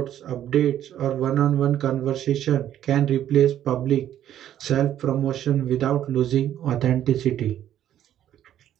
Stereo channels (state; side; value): quieter; left; 11.2 dB